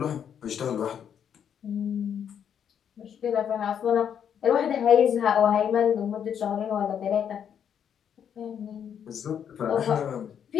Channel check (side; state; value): right; quieter; 8.4 dB